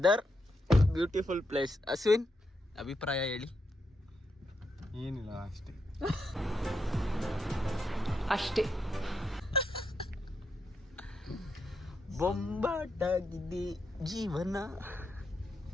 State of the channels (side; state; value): both; normal; correlation 0.82